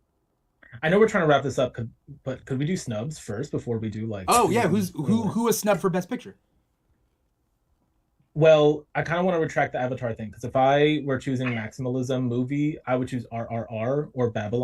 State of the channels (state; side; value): identical; both; correlation 1.00